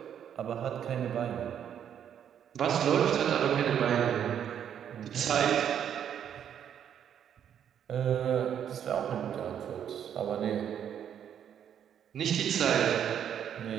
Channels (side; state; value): left; quieter; 9.1 dB